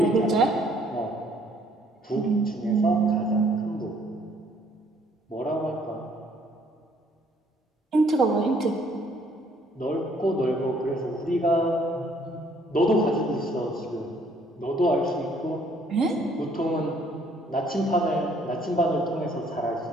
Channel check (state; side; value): normal; both; correlation 0.63